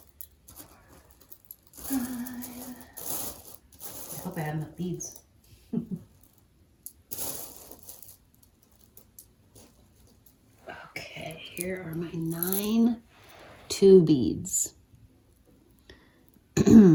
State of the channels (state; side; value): identical; both; correlation 1.00